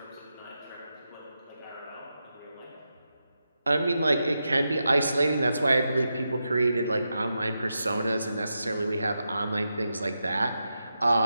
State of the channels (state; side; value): inverted; both; correlation -0.88